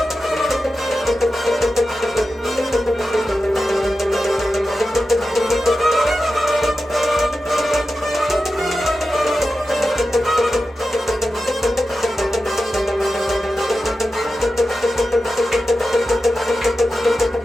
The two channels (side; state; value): both; normal; correlation 0.92